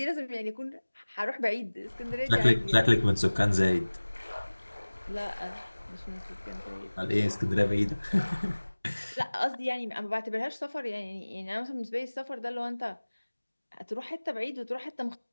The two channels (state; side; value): inverted; both; correlation -1.00